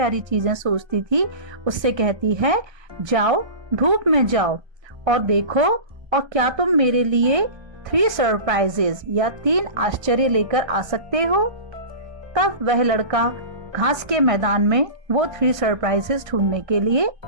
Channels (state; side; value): late; left; 1.3 ms